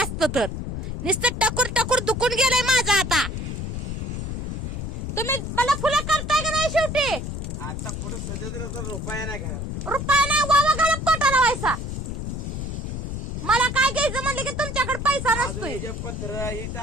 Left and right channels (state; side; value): noise; left; rumble, 5 dB below the sound